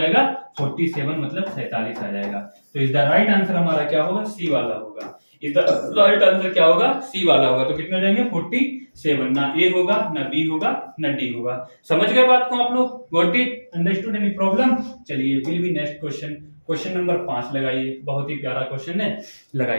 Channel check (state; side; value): inverted; both; correlation -1.00